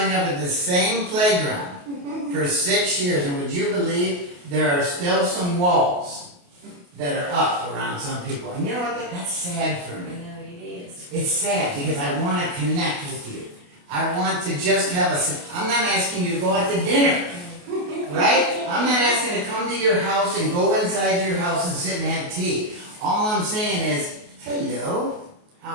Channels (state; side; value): late; left; 28 ms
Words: up at the same playground for 6 years, and would you believe there are still some walls that are up around some people? And you know what? That's sad for me. I know it is. It's sad because I want to connect with you. I want to just have I'm not asking you to go out to dinner, right? I'm not asking to come to your house and go inside your house and sit and have tea. All I'm saying is, hello,